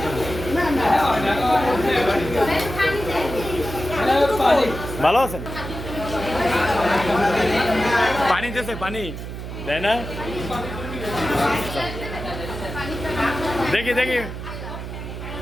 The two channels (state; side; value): noise; right; hum, 8 dB below the sound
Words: ভালো আছেন পানি দিয়েছে পানি দেয় না দেখি দেখি